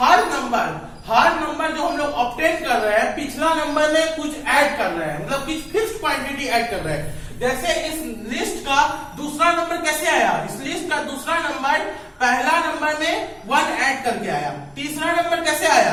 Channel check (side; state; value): both; identical; correlation 1.00